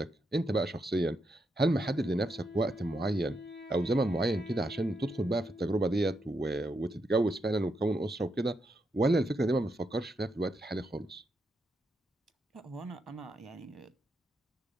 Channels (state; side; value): normal; both; correlation 0.82